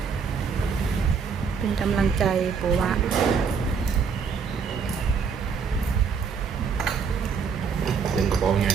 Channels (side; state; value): left; quieter; 5.9 dB